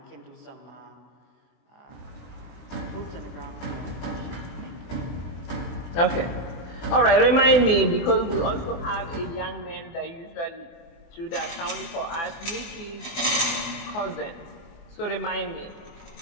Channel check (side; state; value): right; late; 24 ms